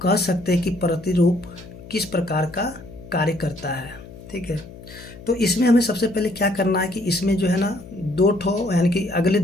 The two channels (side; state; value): left; noise; hum, 17 dB below the sound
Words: कह सकते हैं कि प्रतिरूप किस प्रकार का कार्य करता है? ठीक है, तो इसमें हमें सबसे पहले क्या करना है कि इसमें जो है ना 2 ठो यानी कि अगले